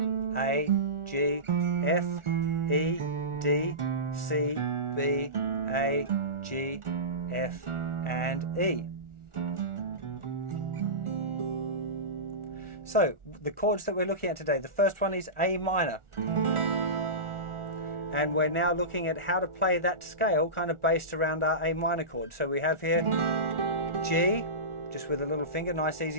A, G, F, E, D, C, B, A, G, F, and E. So the chords that we're looking at today, the first one is A minor. And we're now looking at how to play that scale kind of based around our A minor chord. So we have here G, just with a little finger, nice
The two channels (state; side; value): late; left; 1.4 ms